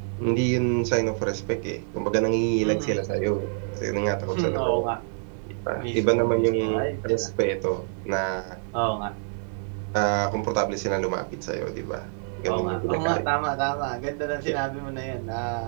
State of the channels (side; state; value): left; silent; 61 dB below the other